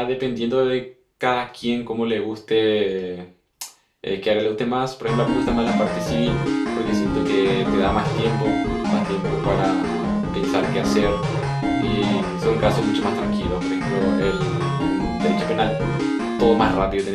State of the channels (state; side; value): identical; both; correlation 1.00